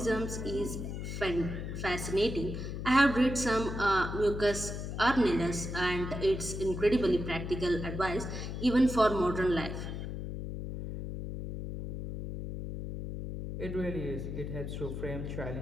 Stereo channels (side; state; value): left; noise; hum, 6 dB below the sound